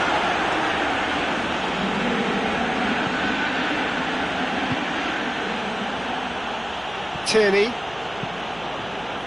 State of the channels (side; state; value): left; noise; hum, 23 dB below the sound